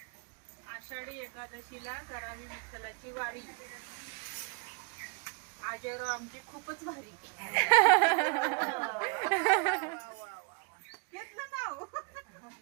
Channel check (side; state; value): left; quieter; 33.9 dB